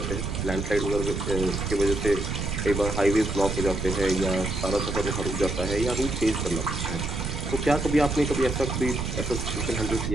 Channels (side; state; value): right; noise; rumble, 3 dB below the sound